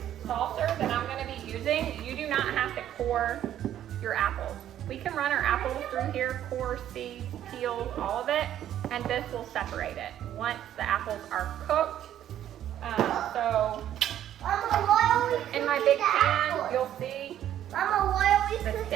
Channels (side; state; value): left; quieter; 11.3 dB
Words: saucer that I'm going to be using, you do not have to core your apples. We can run our apples through here, core, seeds, peels, all of it, and this will separate it once the apples are cooked. So in my big pan, you'll see the